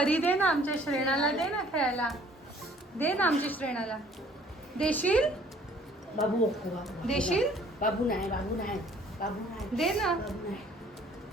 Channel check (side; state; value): both; normal; correlation 0.57